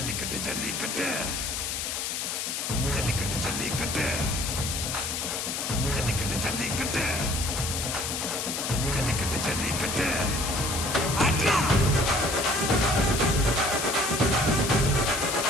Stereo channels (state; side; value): noise; left; hiss, 3 dB below the sound